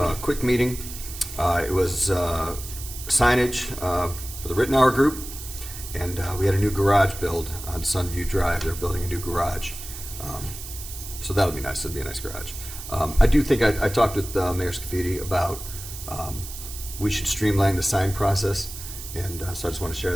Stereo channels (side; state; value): right; noise; hiss, 11 dB below the sound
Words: quick meeting. It was signage for the Rittenauer Group, and we had a new garage build on Sunview Drive. They're building a new garage. So that'll be nice. It'll be a nice garage. I do think I talked with Mayor Scafidi about we should streamline the sign process, and so I just want to share